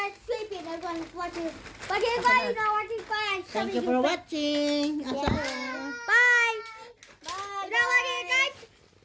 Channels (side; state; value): both; identical; correlation 1.00